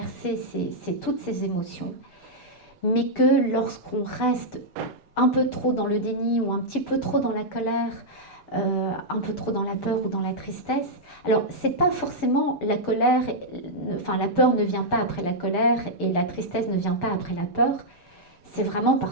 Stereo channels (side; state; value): right; late; 6.9 ms